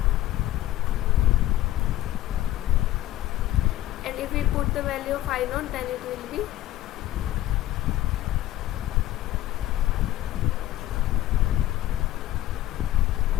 And if we put the value of I naught, then it will be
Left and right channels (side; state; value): right; quieter; 14.4 dB